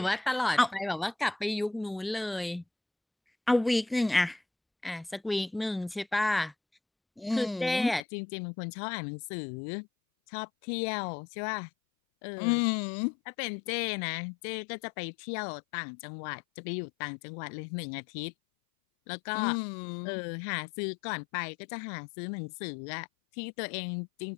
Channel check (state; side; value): drops out; right; at 8.1 s